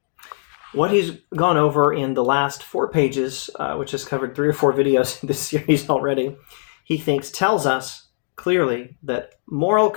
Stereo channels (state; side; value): silent; right; digital silence